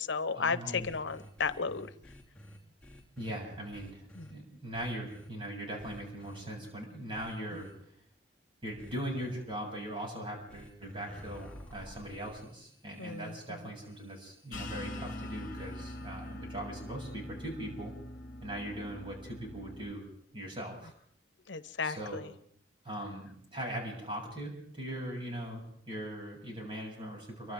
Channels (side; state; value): both; normal; correlation 0.21